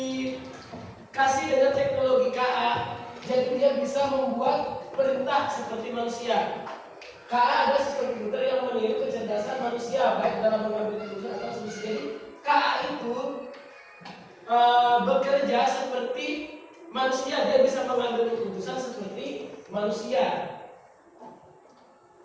dengan teknologi KA, jadi dia bisa membuat perintah seperti manusia. KA adalah sistem komputer yang meniru kecerdasan manusia, baik dalam mengambil keputusan atau solusi. Jadi KA itu bekerja seperti manusia, dia bisa mengambil keputusan seperti manusia.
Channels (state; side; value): identical; both; correlation 1.00